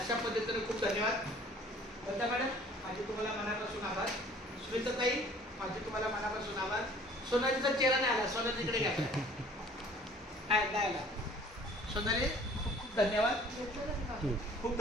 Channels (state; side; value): normal; both; correlation 0.52